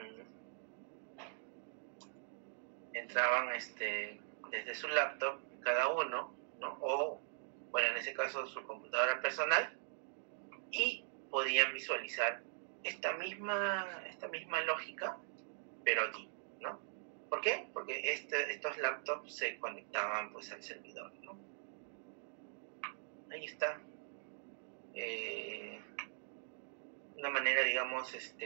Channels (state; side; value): silent; left; digital silence